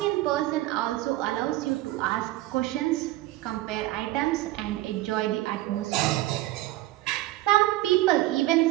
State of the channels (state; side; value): quieter; left; 16.7 dB